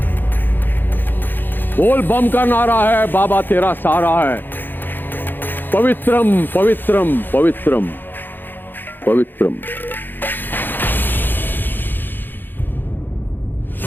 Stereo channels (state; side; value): late; right; 0.093 ms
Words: बोल बम का नारा है, बाबा तेरा सहारा है। पवित्रम पवित्रम पवित्रम पवित्रम।